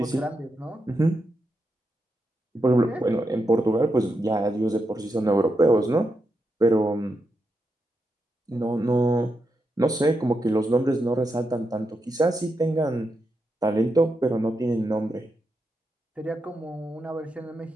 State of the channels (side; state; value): both; normal; correlation 0.85